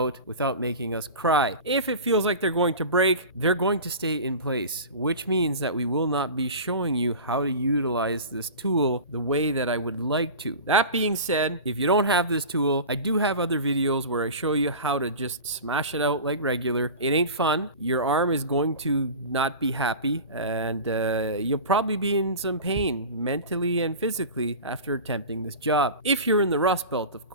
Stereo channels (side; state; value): both; inverted; correlation -0.33